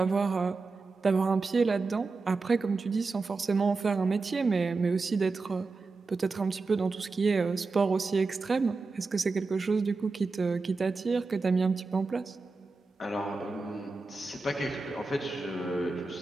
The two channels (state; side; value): quieter; left; 3.9 dB